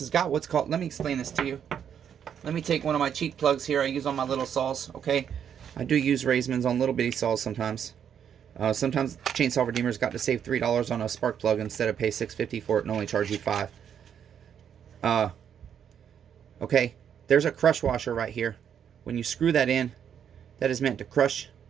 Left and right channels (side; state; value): left; quieter; 8.5 dB